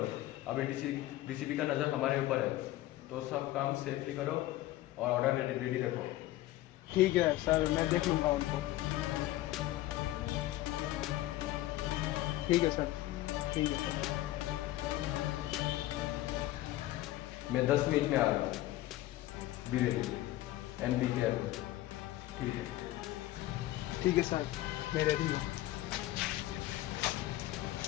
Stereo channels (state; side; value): quieter; right; 15.8 dB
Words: अभी डीसीपी का नज़र हमारे ऊपर है, तो सब काम सेफली करो और ऑर्डर रेडी रखो। ठीक है सर, मैं देख लूँगा उनको। ठीक है सर, ठीक है सर। मैं 10 मिनट में आ रहा हूँ। बी रेडी, एमपी के एयरपोर्ट। ठीक है। ठीक है सर, मैं रेडी हूँ।